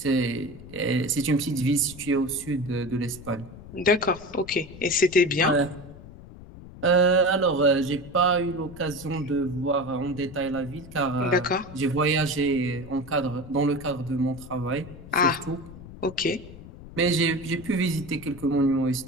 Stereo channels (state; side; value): noise; left; rumble, 16 dB below the sound